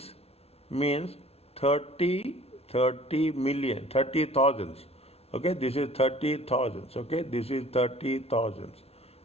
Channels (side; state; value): right; late; 0.30 ms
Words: means 30 30 million 30 thousands. Okay, this is 30 thousands. Okay, this is 30 thousands